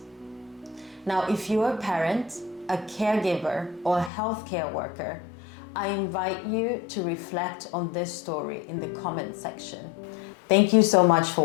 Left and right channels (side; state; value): right; drops out; at 4.1 s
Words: Now, if you're a parent, a caregiver, or a healthcare worker, I invite you to reflect on this story in the comment section. Thank you so much